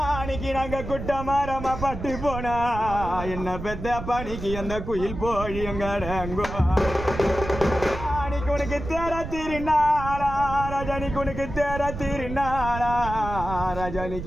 அன்னைக்கு நாங்க குட்ட மாறாம பட்டு போனா என்ன பெத்த பணிக்கு அந்த குயில் போய் எங்கட அங்கோ உனக்கு தேர திருநாளா ராஜானிக்கு உனக்கு தேர திருநாளா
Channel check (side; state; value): right; noise; rumble, 8 dB below the sound